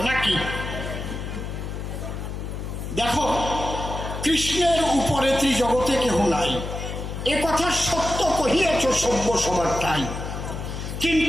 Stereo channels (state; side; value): noise; left; hum, 6 dB below the sound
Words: নাকি? দেখো, কৃষ্ণের উপরে ত্রিজগতে কেহ নাই, এ কথা সত্য কহিয়াছ সভ্য সবারটাই,